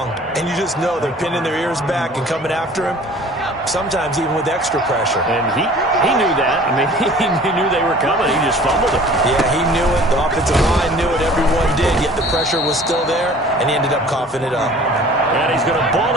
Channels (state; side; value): normal; both; correlation 0.48